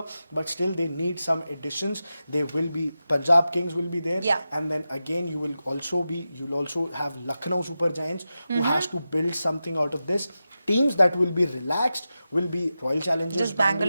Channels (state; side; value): inverted; both; correlation -0.92